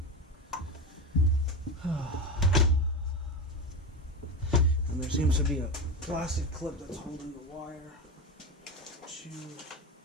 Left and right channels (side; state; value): both; normal; correlation 0.20